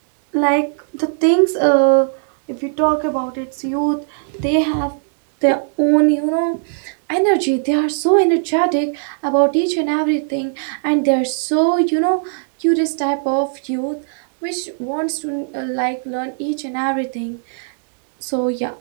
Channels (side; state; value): left; silent; digital silence